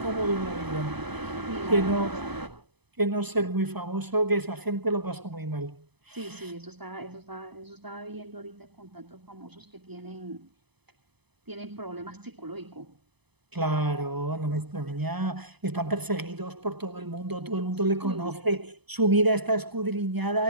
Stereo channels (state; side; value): late; left; 0.99 ms